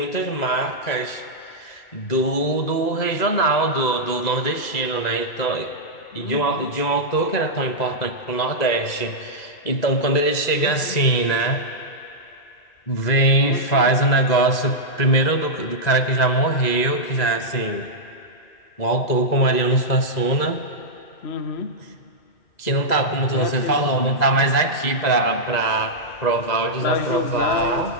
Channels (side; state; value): right; late; 2.0 ms